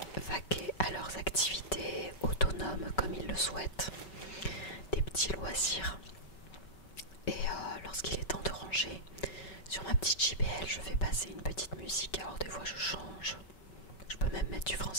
vaquer à leurs activités autonomes comme ils le souhaitent, des petits loisirs. Et lorsqu'il est temps de ranger, sur ma petite JBL, je fais passer une petite musique. Alors des fois je change. Je peux même mettre du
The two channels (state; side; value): late; right; 5.3 ms